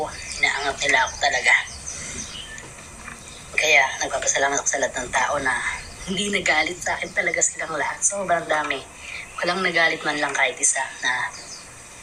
Inaangat nila ako talaga. Kaya nagpapasalamat ako sa lahat ng tao na hindi nagalit sa akin talaga silang lahat. Sobrang dami. Walang nagalit man lang kahit isa na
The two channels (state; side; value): identical; both; correlation 1.00